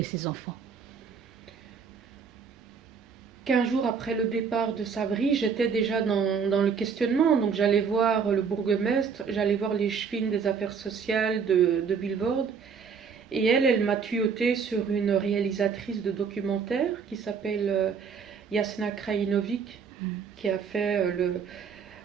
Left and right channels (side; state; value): left; quieter; 6.1 dB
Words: ces enfants? 15 jours après le départ de Sabri, j'étais déjà dans le questionnement. Donc j'allais voir le bourgmestre, j'allais voir les chefines des affaires sociales de Vilvoorde. Et elle m'a tuyautée sur une réalisatrice de documentaire qui s'appelle Jasna Krajinovic, qui a fait